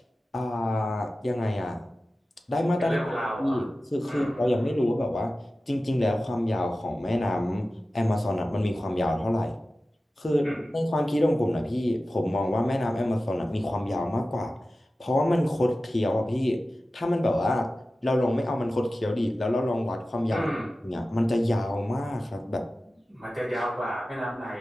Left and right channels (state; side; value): normal; both; correlation 0.95